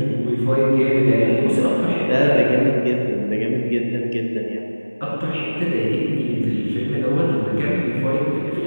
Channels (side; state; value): both; inverted; correlation -1.00